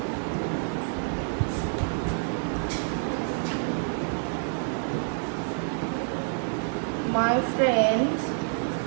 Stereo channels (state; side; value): silent; left; 59 dB below the other